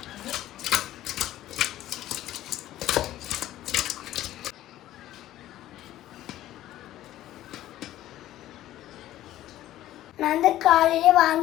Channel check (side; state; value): right; quieter; 13.9 dB